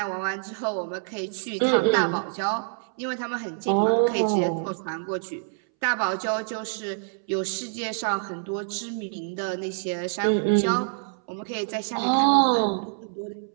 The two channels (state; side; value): silent; left; 61 dB below the other